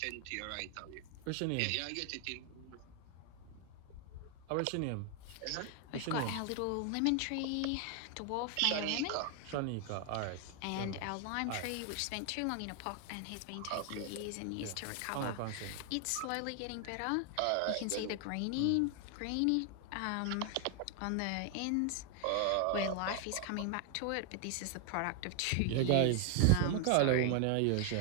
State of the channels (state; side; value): different; both; correlation 0.00